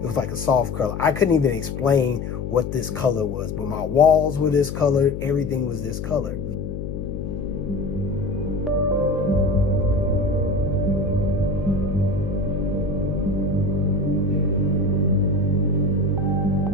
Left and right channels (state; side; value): noise; left; hum, 6 dB below the sound